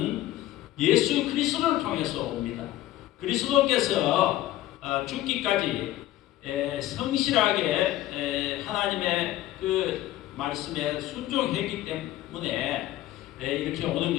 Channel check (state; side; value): quieter; right; 14.6 dB